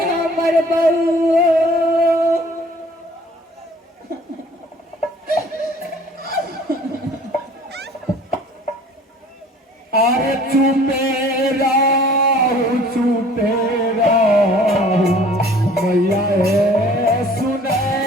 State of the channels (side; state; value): both; normal; correlation 0.51